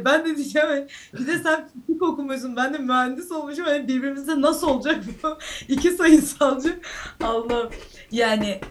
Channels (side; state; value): both; identical; correlation 1.00